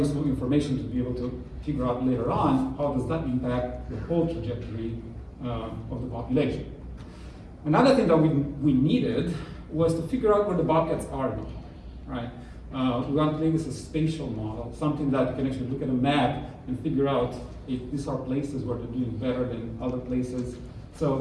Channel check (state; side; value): identical; both; correlation 1.00